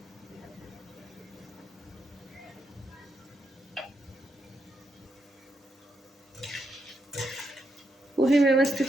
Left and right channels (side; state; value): both; normal; correlation 0.81